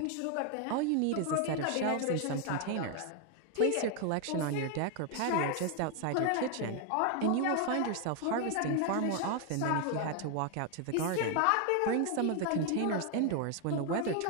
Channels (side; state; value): both; different; correlation 0.00